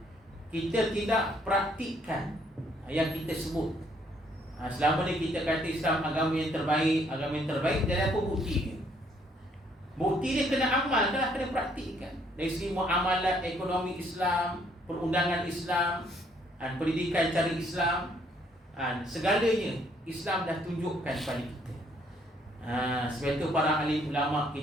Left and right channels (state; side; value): normal; both; correlation 0.67